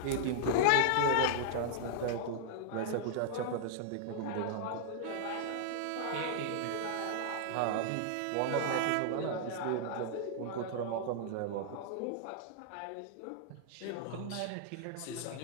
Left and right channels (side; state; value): both; different; correlation -0.01